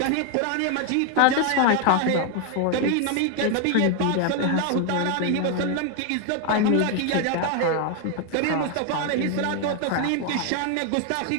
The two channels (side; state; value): both; different; correlation 0.00